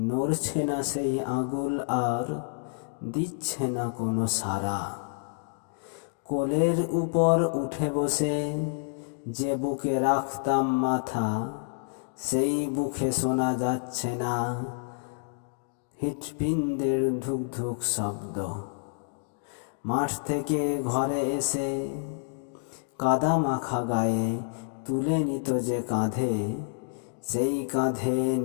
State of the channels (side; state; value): right; silent; digital silence